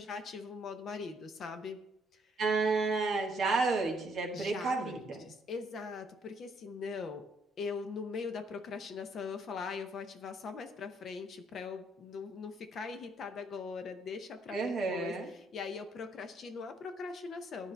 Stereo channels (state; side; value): normal; both; correlation 0.69